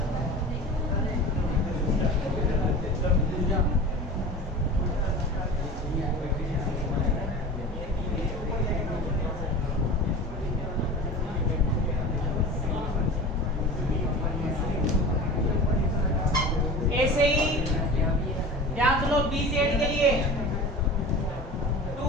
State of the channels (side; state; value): both; normal; correlation 0.34